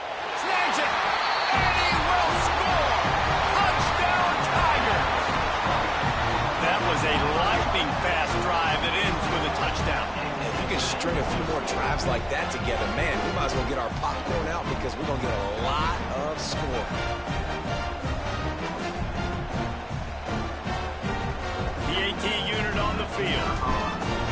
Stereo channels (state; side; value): identical; both; correlation 1.00